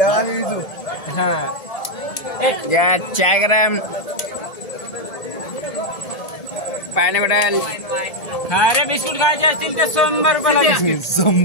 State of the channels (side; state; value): right; late; 1.8 ms